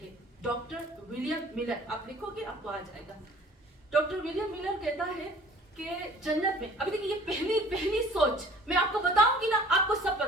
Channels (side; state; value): both; normal; correlation 0.50